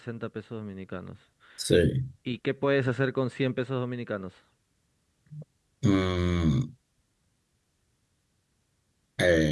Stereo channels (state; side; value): identical; both; correlation 1.00